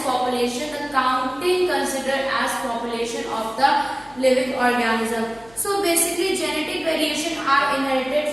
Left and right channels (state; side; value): noise; left; hum, 26 dB below the sound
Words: population. The counting considered as population of the living organism. So basically genetic variation are